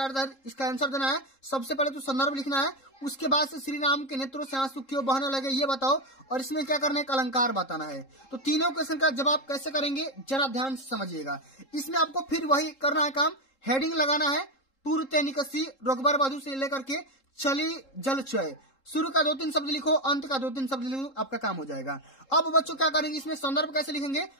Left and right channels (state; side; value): late; right; 3.7 ms